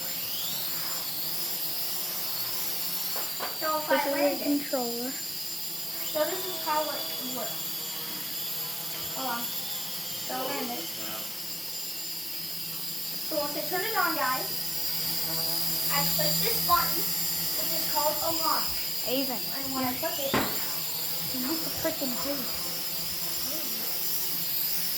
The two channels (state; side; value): identical; both; correlation 1.00